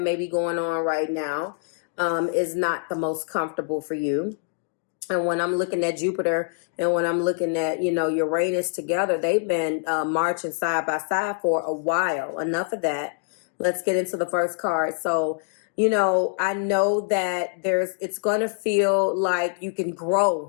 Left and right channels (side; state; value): right; silent; digital silence